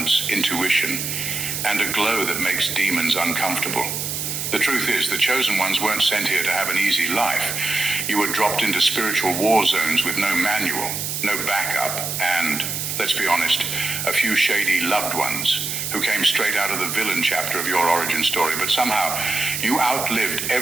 intuition, and a glow that makes demons uncomfortable. The truth is, the chosen ones weren't sent here to have an easy life. You were dropped into spiritual war zones with no manual, no backup, and, let's be honest, a few shady loved ones who came straight out of the villain chapter of your origin story. But somehow, you outlived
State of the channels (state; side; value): noise; right; hiss, 3 dB below the sound